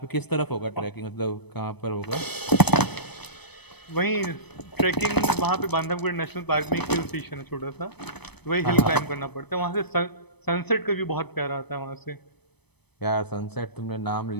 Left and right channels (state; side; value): late; right; 0.98 ms